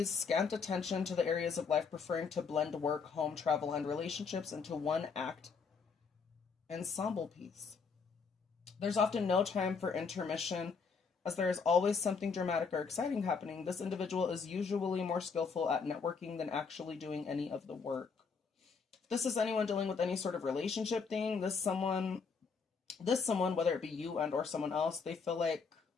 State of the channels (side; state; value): right; quieter; 5.3 dB